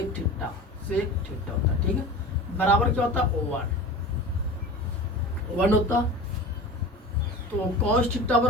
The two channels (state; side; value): normal; both; correlation 0.34